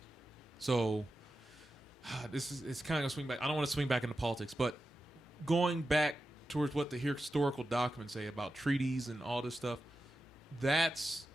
so it's kind of gonna swing back. I don't want to swing back into politics, but going back towards what the historical documents say about treaties and all this stuff, that's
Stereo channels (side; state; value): both; normal; correlation 0.91